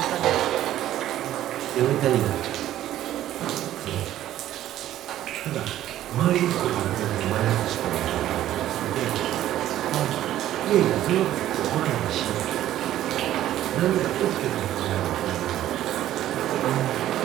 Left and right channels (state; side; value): quieter; left; 12.9 dB